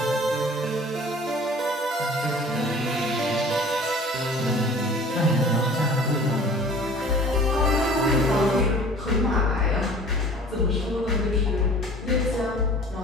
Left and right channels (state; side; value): normal; both; correlation 0.46